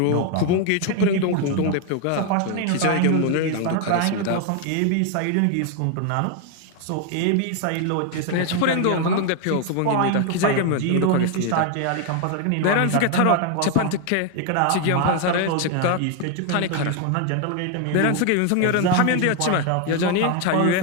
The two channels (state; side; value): different; both; correlation 0.01